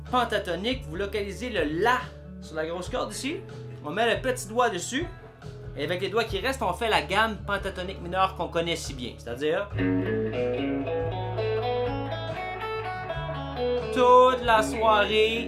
pentatonique, vous localisez le La sur la grosse corde ici. On met le petit doigt dessus. Et avec les doigts qui restent, on fait la gamme pentatonique mineure qu'on connaît si bien. C'est-à-dire... toute la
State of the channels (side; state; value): both; identical; correlation 1.00